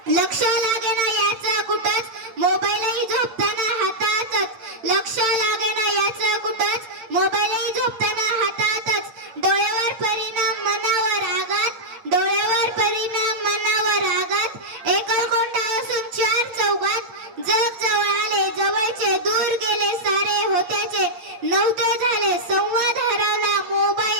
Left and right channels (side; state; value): left; late; 8.8 ms